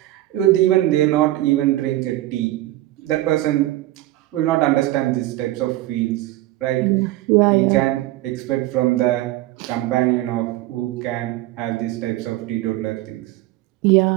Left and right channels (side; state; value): left; quieter; 16.4 dB